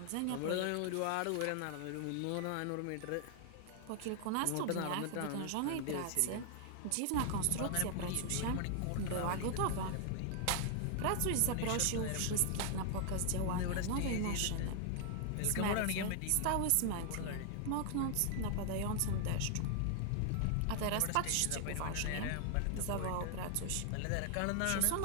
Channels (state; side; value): different; both; correlation 0.00